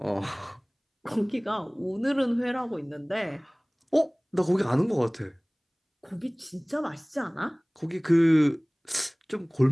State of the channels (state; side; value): identical; both; correlation 1.00